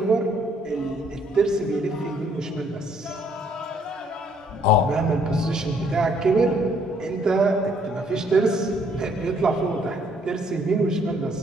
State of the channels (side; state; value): both; normal; correlation 0.66